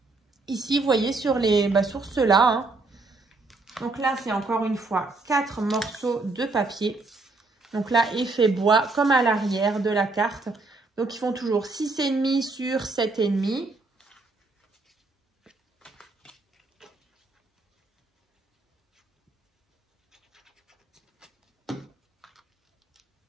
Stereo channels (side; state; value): left; quieter; 3.5 dB